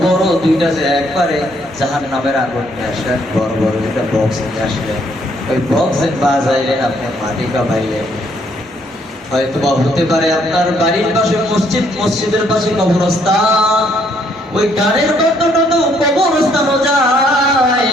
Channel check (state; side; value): normal; both; correlation 0.68